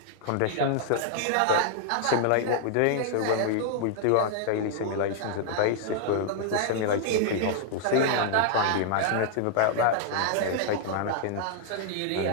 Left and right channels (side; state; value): both; different; correlation -0.01